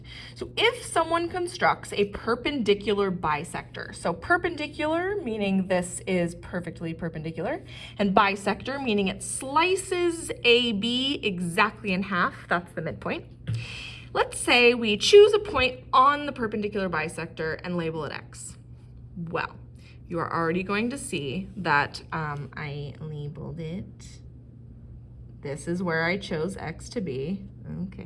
So if someone constructs a perpendicular bisector, so perpendicular meaning this is perfectly perpendicular, and bisector meaning it slices AB exactly in half, that's the midpoint. Let's say we choose a point on the perpendicular bisector and label it X. Well, you are already going to see that I labeled it. This is where I chose X to be,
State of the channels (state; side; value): identical; both; correlation 1.00